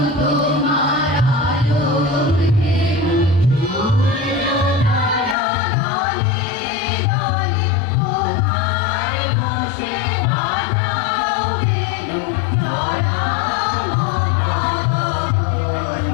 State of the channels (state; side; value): drops out; right; at 5.4 s